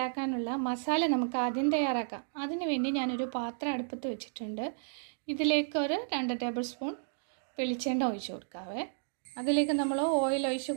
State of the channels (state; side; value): silent; left; digital silence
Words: മസാല നമുക്ക് ആദ്യം തയ്യാറാക്കാം. അതിനു വേണ്ടി ഞാനൊരു പാത്രം അടുപ്പത്ത് വെച്ചിട്ടുണ്ട്. ഇതിലേക്ക് ഒരു 2 ടേബിൾ സ്പൂൺ വെളിച്ചെണ്ണ ഒഴിച്ച് കൊടുക്കാവേ. അതിലേക്ക് നമ്മൾ ഓയിൽ ഒഴിച്ച്